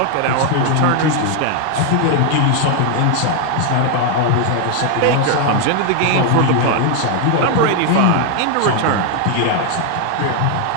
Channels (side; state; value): both; different; correlation 0.00